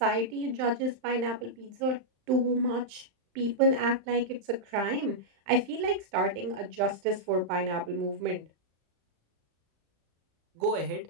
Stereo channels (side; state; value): left; late; 35 ms